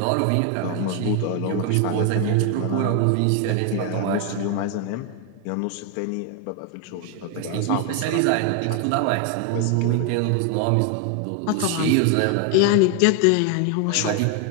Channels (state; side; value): different; both; correlation 0.01